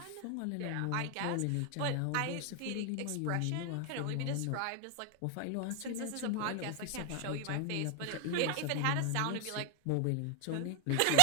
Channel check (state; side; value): different; both; correlation 0.00